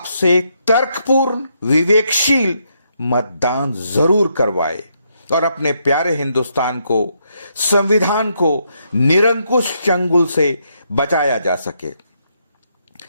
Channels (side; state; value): both; inverted; correlation -0.77